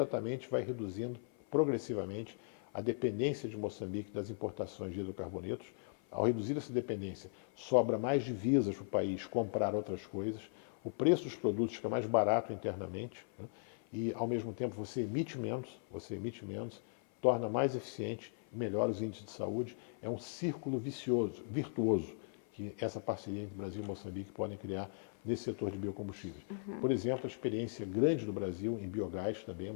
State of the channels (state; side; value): silent; right; 52 dB below the other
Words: vai reduzindo progressivamente a dependência de Moçambique das importações de hidrocarbonetos. Ao reduzir essa dependência, sobra mais divisas para o país comprar outras coisas, o preço dos produtos fica mais barato internamente, né, e ao mesmo tempo você emite menos, torna mais eficiente, melhora os índices de saúde. É um círculo virtuoso, que essa parceria entre Brasil e Moçambique podem criar nesse setor de biocombustíveis. Por exemplo, a experiência grande do Brasil em biogás também é